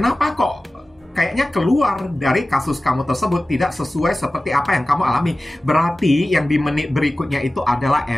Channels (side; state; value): both; normal; correlation 0.96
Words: kok kayaknya keluar dari kasus kamu tersebut tidak sesuai seperti apa yang kamu alami? Berarti yang di menit berikutnya itu adalah